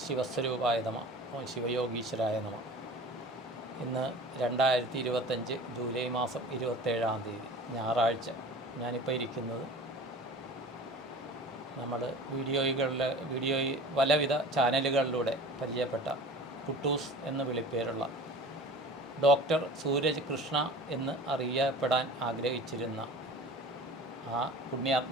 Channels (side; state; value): both; normal; correlation 0.39